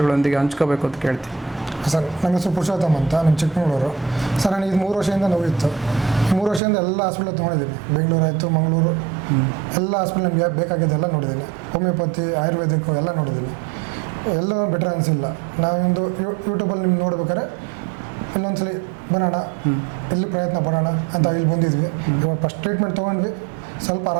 ಹಂಚ್ಕೋಬೇಕು ಅಂತ ಕೇಳ್ತೀನಿ. ಸರ್, ನನ್ನ ಹೆಸರು ಪುರುಷೋತ್ತಮ್ ಅಂತ, ನಮ್ಮ ಚಿಕ್ಕಮಗಳೂರು. ಸರ್, ನನಗೆ 3 ವರ್ಷದಿಂದ ನೋವಿತ್ತು. 3 ವರ್ಷದಿಂದ ಎಲ್ಲ ಹಾಸ್ಪಿಟಲ್ ತೊಗೊಂಡಿದ್ದೀನಿ. ಬೆಂಗಳೂರು ಆಯಿತು, ಮಂಗಳೂರು, ಎಲ್ಲ ಹಾಸ್ಪಿಟಲ್ ನಮಗೆ ಬೇಕಾಗಿದ್ದೆಲ್ಲ ನೋಡಿದ್ದೀನಿ. ಹೋಮಿಯೋಪತಿ, ಆಯುರ್ವೇದಿಕ್ಕು ಎಲ್ಲ ನೋಡಿದ್ದೀನಿ. ಎಲ್ಲ ಬೆಟರ್ ಅನಿಸಿಲ್ಲ. ನಾವೊಂದು ಯೂಟ್ಯೂಬಲ್ಲಿ ನಿಮ್ಗೆ ನೋಡ್ಬೇಕಾದ್ರೆ ಇನ್ನೊಂದ್ಸಲಿ ಬರೋಣ, ಎಲ್ಲಿ ಪ್ರಯತ್ನ ಪಡೋಣ ಅಂತ ಇಲ್ಲಿ ಬಂದಿದ್ವಿ. ಇವಾಗ ಫಸ್ಟ್ ಟ್ರೀಟ್ಮೆಂಟ್ ತೊಗೊಂಡ್ವಿ, ಸ್ವಲ್ಪ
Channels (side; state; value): left; drops out; at 6.6 s